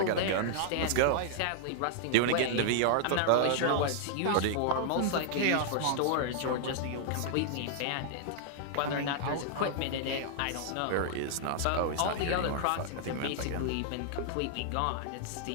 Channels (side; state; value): both; different; correlation -0.01